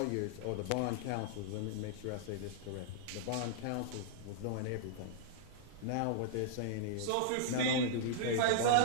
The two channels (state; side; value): different; both; correlation -0.02